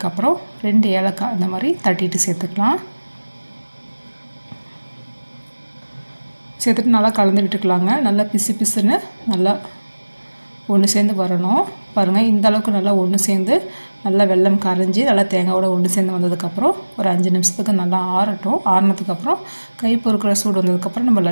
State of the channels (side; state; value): both; inverted; correlation -1.00